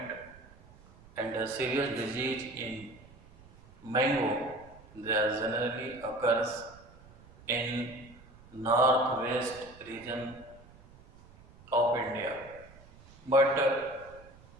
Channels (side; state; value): right; noise; rumble, 23 dB below the sound